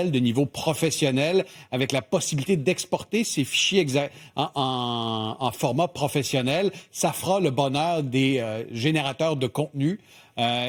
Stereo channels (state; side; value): identical; both; correlation 1.00